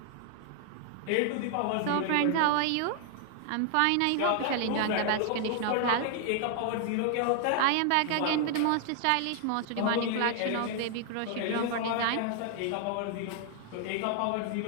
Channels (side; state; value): both; different; correlation 0.00